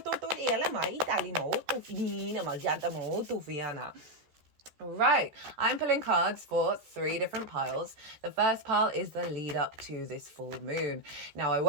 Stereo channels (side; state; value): left; late; 14 ms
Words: Right, I'm pulling cards for 3 different piles. The first pile is the lead up to this full moon. Now, I